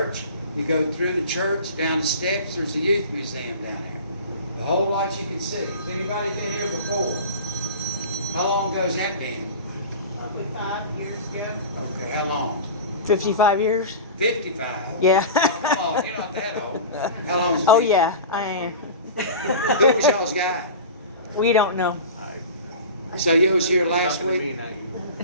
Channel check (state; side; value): inverted; both; correlation -0.34